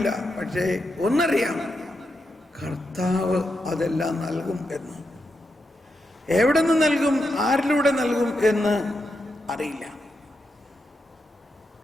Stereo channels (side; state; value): both; normal; correlation 0.85